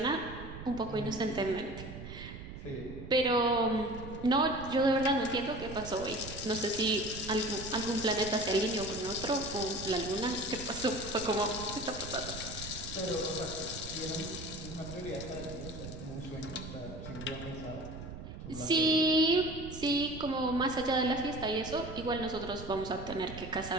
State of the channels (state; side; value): noise; right; rumble, 11 dB below the sound